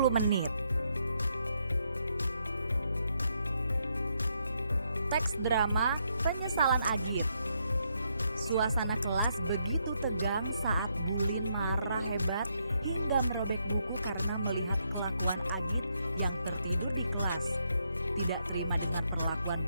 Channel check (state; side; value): inverted; both; correlation -0.77